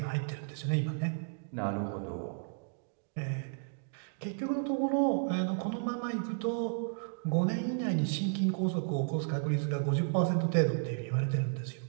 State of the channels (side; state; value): left; silent; digital silence